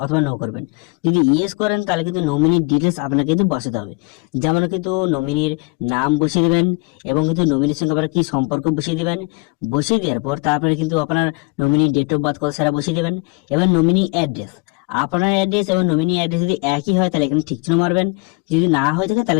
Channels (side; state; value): right; quieter; 28.9 dB